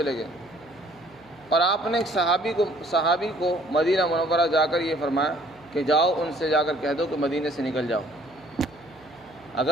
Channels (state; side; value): noise; right; hum, 29 dB below the sound